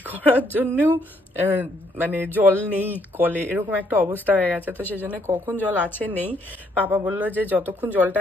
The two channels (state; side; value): normal; both; correlation 0.70